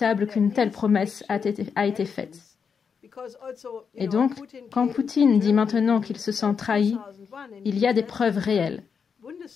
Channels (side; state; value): right; quieter; 6.2 dB